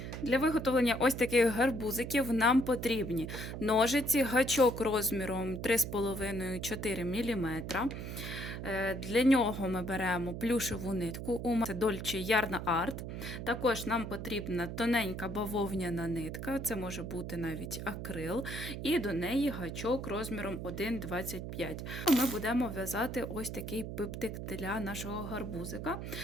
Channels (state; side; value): noise; right; hum, 7 dB below the sound